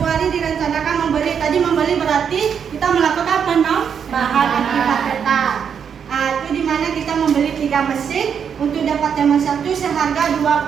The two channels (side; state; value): left; quieter; 7.4 dB